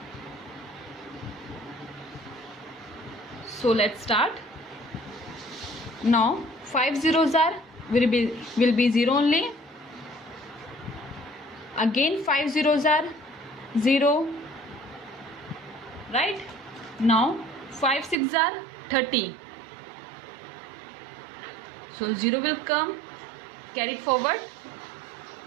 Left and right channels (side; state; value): left; drops out; at 18.2 s